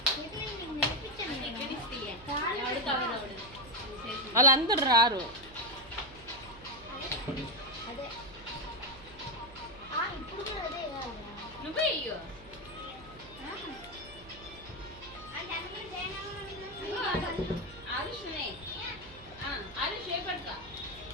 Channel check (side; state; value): right; noise; hum, 19 dB below the sound